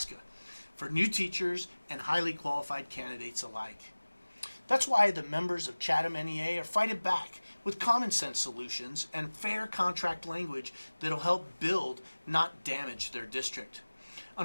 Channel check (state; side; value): inverted; both; correlation -1.00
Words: for new teachers and highly qualified candidates alike. That's why the members of Chatham NEA are fighting back with common sense solutions and fair contract language that'll help build, not damage their district.